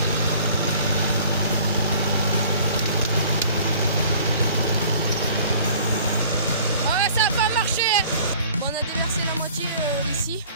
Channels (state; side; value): inverted; both; correlation -0.50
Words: Ah ouais, ça a pas marché. Bon, on a déversé la moitié ici,